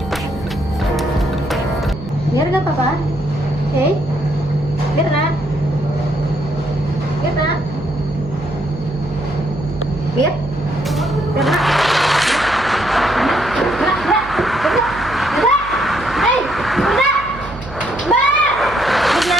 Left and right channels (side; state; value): right; noise; hum, 14 dB below the sound